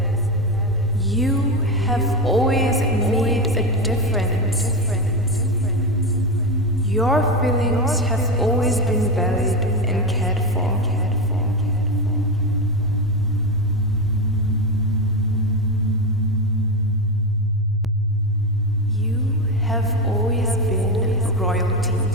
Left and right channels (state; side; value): normal; both; correlation 0.15